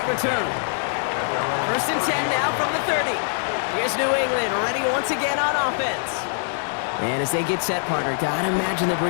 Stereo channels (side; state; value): right; silent; digital silence